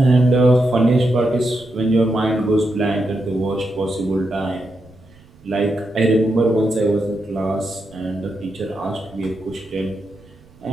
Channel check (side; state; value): right; noise; rumble, 27 dB below the sound